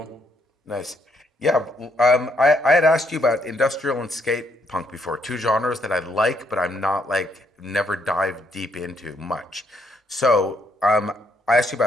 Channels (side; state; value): both; normal; correlation 0.73